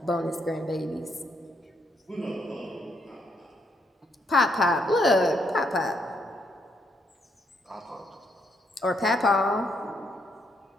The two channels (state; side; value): normal; both; correlation 0.75